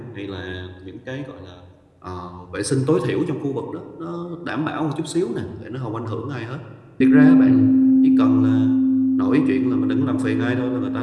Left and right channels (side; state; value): both; identical; correlation 1.00